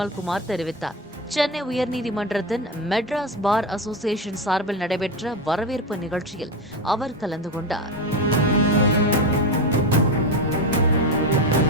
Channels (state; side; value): normal; both; correlation 0.17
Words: தெரிவித்தார். சென்னை உயர்நீதிமன்றத்தின் மெட்ராஸ் பார் அசோசியேஷன் சார்பில் நடைபெற்ற வரவேற்பு நிகழ்ச்சியில் அவர் கலந்து கொண்டார்.